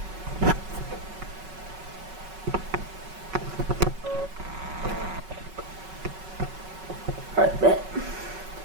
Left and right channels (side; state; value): left; late; 5.3 ms